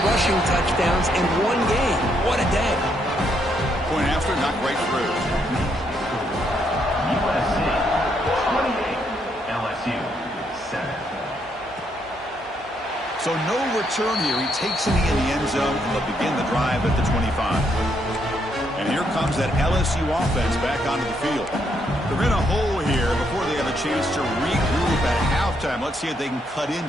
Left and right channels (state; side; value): normal; both; correlation 0.75